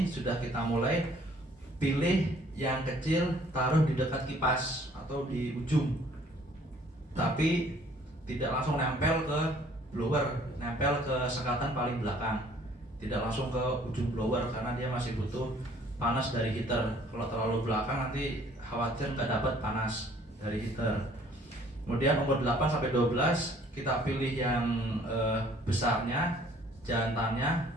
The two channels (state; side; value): normal; both; correlation 0.57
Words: sudah kita mulai pilih yang kecil, taruh di dekat kipas atau di ujung. Tapi tidak langsung nempel ke blower, nempel ke sekatan paling belakang. Tidak langsung ke ujung blower karena dia masih butuh panas dari heater. Kalau terlalu belakang nanti khawatir nggak dapat panas dari heater. Kemudian umur 8 sampai 12 kita pilih yang besarnya, jantannya